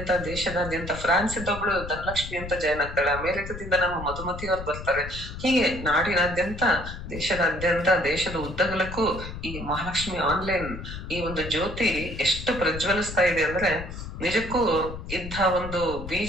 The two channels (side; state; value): left; noise; rumble, 9 dB below the sound